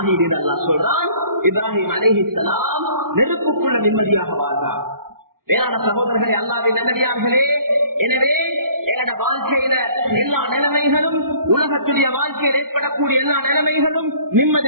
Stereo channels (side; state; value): left; late; 0.92 ms